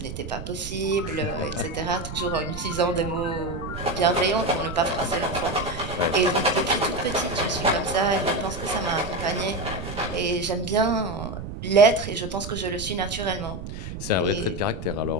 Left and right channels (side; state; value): right; noise; rumble, 9 dB below the sound